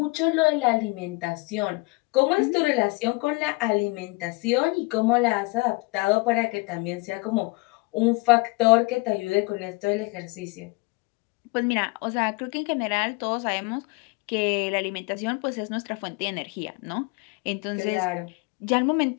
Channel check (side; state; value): right; quieter; 27.0 dB